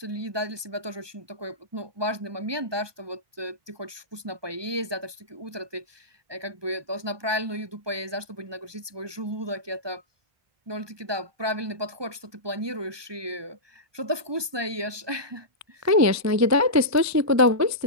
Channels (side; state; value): left; late; 1.2 ms